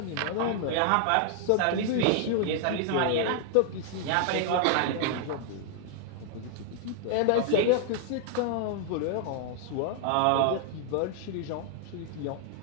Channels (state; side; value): different; both; correlation 0.00